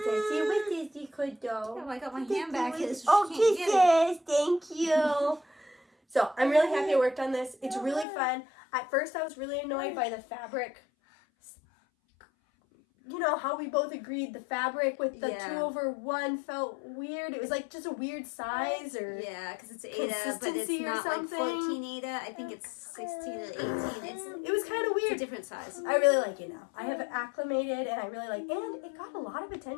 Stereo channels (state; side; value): drops out; right; at 8.1 s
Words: see what this you could do. Oh, I got my hand back. Oh, kisses. Thank you. So I'm really happy I worked on this. It's really fun. At first I was really annoyed by the fabric. You know how we both agreed the fabric with the 2/1 felt weird. It was like just a weird size or because it's Aida, but it's consistency or not something. like 14 Aida. I think it's 16 or 18. It was kind of weird. It's a different size. I really like it now. I have it acclimated and I really like it. And it got a lot of